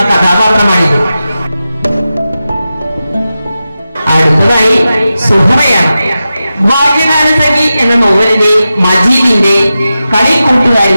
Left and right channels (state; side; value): inverted; both; correlation -0.93